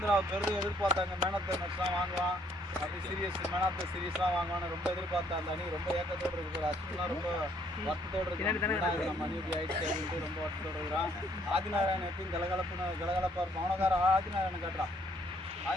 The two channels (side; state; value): both; normal; correlation 0.66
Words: பெருது எதிர்பார்த்தாங்க, மேன் ஆஃப் தி மேட்ச்லாம் வாங்குவான். அப்படி சீரியஸ் மேன் ஆஃப் த சீரியஸ்லாம் வாங்கணும் ரொம்ப எதிர்பார்த்தா அந்த அணி ரொம்ப ஏக்கத்தோடு இருக்கு. அஸ்வின்லாம் ரொம்ப வருத்தத்தோடு இருக்கு. நம்ம அணி இப்படி ஆயிடுச்சு அப்படின்ட்டு ரொம்ப வருத்தத்தோடு இருக்கிறான். ஆதிநாராயணன் எப்பயும் கலகலப்பா இருக்கும். அவனக்கார ஆதிநாராயணன் காட்டுறான்.